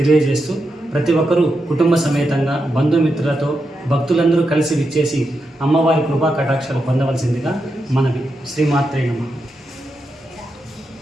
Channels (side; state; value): both; normal; correlation 0.86